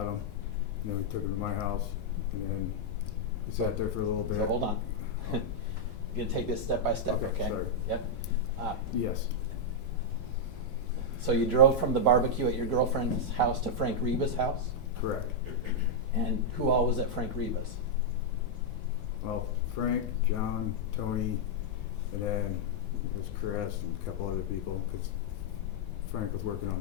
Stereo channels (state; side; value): normal; both; correlation -0.04